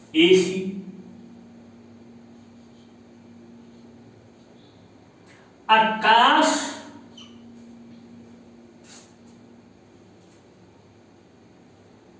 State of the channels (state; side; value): identical; both; correlation 1.00